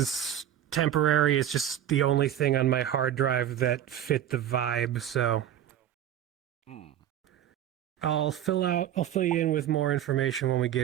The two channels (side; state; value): left; quieter; 10.8 dB